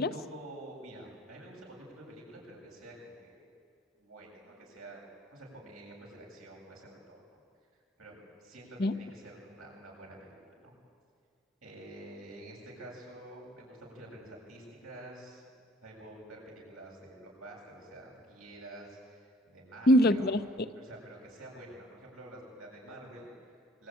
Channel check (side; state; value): both; normal; correlation 0.58